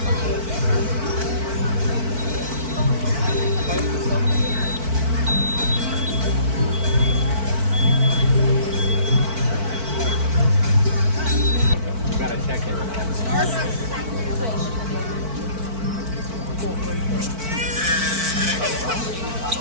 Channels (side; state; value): left; late; 4.5 ms